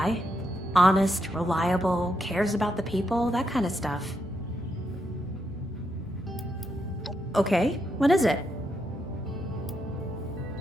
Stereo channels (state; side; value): normal; both; correlation 0.81